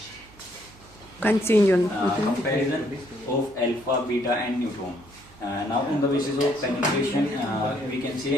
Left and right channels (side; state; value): right; noise; hum, 24 dB below the sound